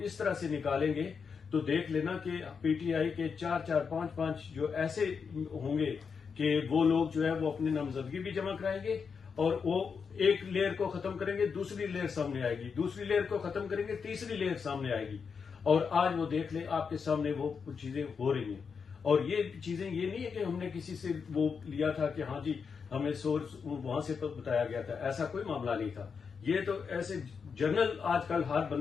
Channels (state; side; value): quieter; right; 5.9 dB